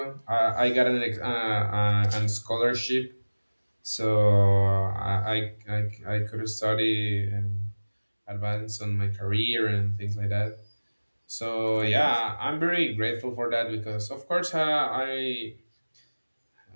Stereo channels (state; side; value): inverted; both; correlation -1.00